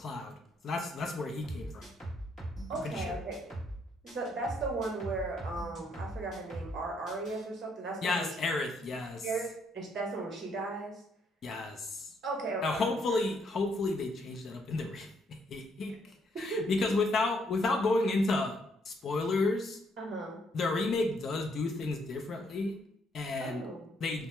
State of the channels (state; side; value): normal; both; correlation 0.71